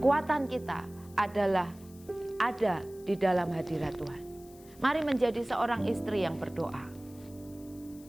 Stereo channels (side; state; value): left; noise; hiss, 24 dB below the sound